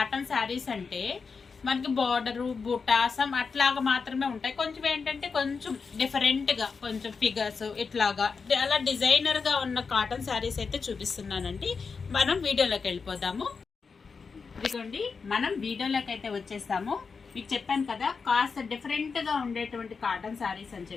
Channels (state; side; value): quieter; right; 5.2 dB